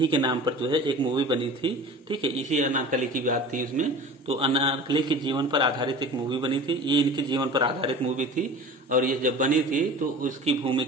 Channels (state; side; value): normal; both; correlation 0.38